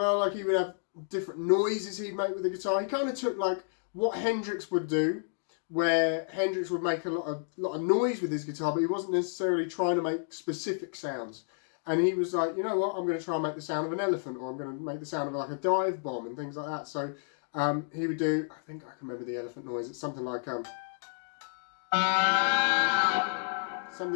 like he would have different noises he'd make with the guitar. He kind of took like what Hendrix would do, where Hendrix would make a lot of noise with his guitar, but he wasn't necessarily trying to make specific sounds. And he was like, you know what, I'm going to try and make the sound of an elephant, or I'm going to make the sound of like a dive bomb and things like that. So he would do, I think I can remember the elephant noise, it's something like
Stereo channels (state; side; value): silent; right; digital silence